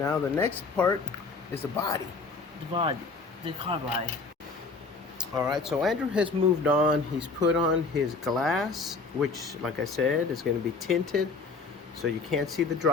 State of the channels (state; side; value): quieter; right; 4.2 dB